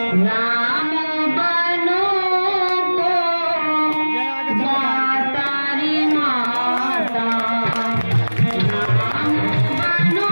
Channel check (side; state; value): both; inverted; correlation -1.00